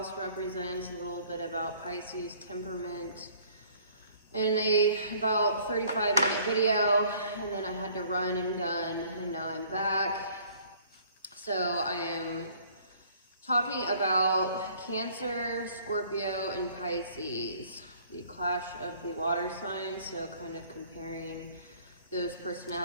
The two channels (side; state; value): both; inverted; correlation -0.57